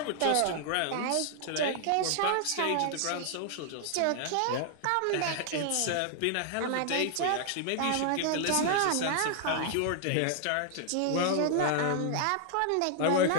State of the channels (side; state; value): both; different; correlation 0.00